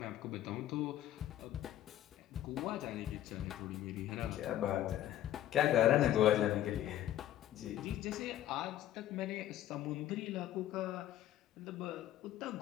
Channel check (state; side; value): quieter; right; 12.6 dB